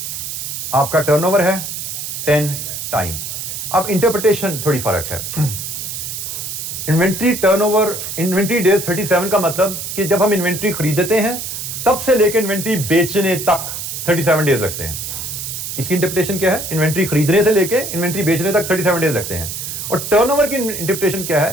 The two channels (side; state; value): right; noise; hiss, 6 dB below the sound